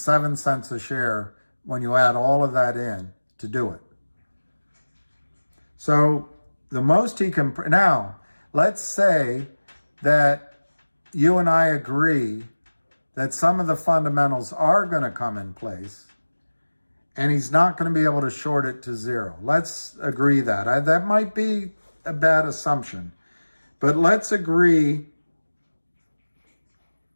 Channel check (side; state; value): both; inverted; correlation -1.00